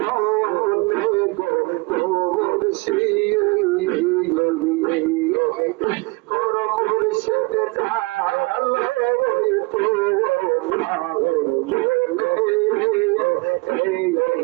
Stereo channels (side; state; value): left; quieter; 26.4 dB